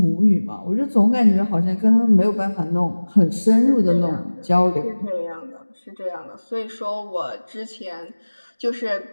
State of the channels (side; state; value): both; inverted; correlation -1.00